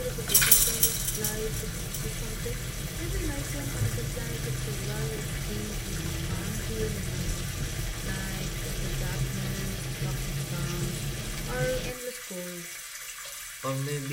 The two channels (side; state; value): both; identical; correlation 1.00